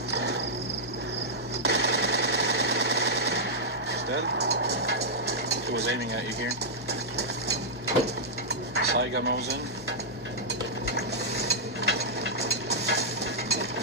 He was aiming at you here. Saiga moves in.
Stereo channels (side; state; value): both; normal; correlation -0.08